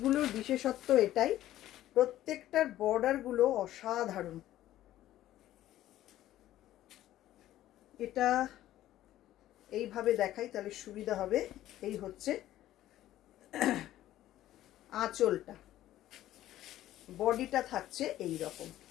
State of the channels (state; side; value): quieter; right; 13.7 dB